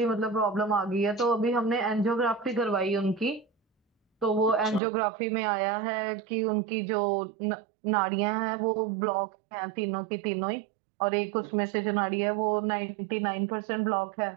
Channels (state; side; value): drops out; left; at 4.8 s